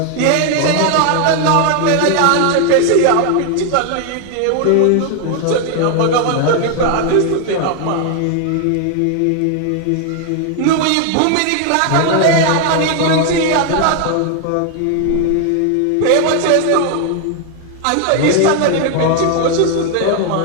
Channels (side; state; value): both; different; correlation 0.01